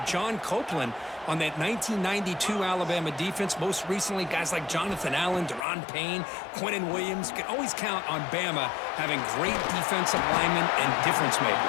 John Copeland on that 1992 Alabama defense. Most recently, guys like Jonathan Allen, Deron Payne, Quentin Williams. You can always count on Bama having great defensive linemen and difference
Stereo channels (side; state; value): right; drops out; at 5.7 s